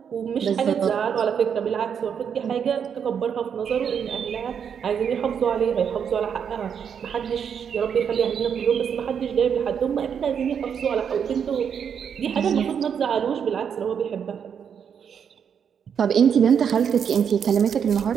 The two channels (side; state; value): left; quieter; 7.5 dB